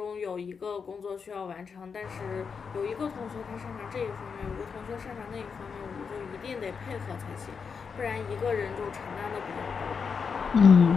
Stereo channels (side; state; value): right; quieter; 5.8 dB